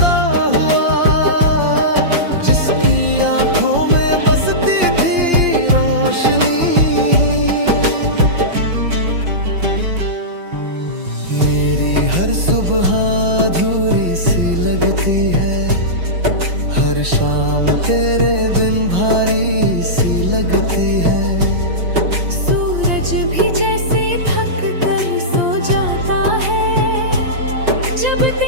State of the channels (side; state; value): left; late; 5.8 ms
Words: हुआ, जिसकी आंखों में बसती थी रोशनी। मेरी हर सुबह अधूरी सी लगती है, हर शाम तेरे बिन भारी सी लगती है। सूरज भी जैसे थक कर सो जाता है, जब